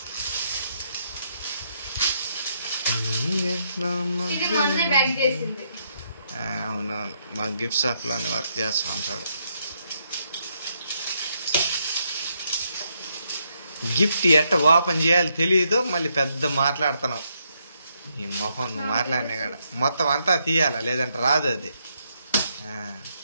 ఇది మొన్నే బ్యాగ్ చేసింది. అవునవును, మా గిఫ్ట్ షాప్ లోనే వర్క్ చేస్తా ఉంటాడు. గిఫ్ట్ ఎట్ట ఓపెన్ చేయాలి తెలియదు, మళ్ళీ పెద్ద మాట్లాడుతున్నావు. ఈ మొహం నువ్వు మాట్లాడినా కూడా మొత్తం అంతా తీయాలా, లేదంటే రాదు అది.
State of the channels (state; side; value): inverted; both; correlation -0.77